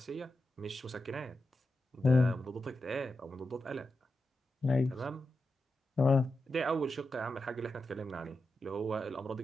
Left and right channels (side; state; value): both; normal; correlation 0.89